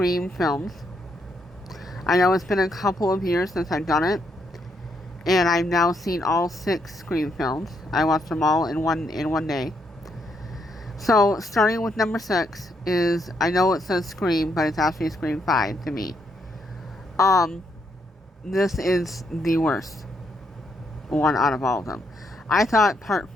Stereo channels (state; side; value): normal; both; correlation 0.76